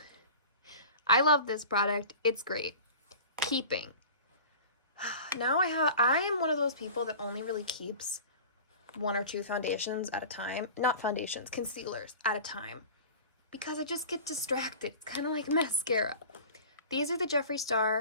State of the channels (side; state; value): both; inverted; correlation -0.38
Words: I love this product. It's great. Keeping. Now I am one of those people that only really keeps 1 or 2 foundations at a time. Not foundations, concealers at a time. Because I just get distracted. It's kind of like mascara. These are the Jeffree